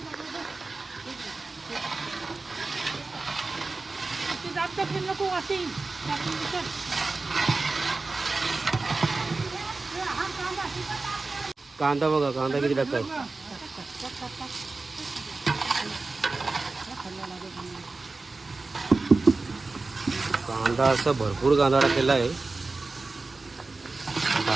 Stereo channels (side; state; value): left; quieter; 3.6 dB